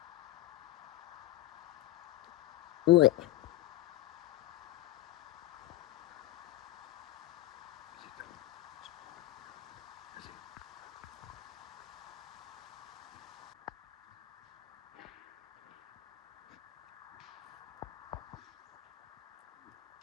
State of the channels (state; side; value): quieter; right; 16.1 dB